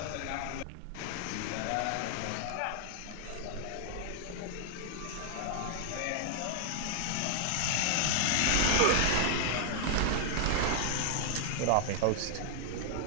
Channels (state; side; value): different; both; correlation 0.00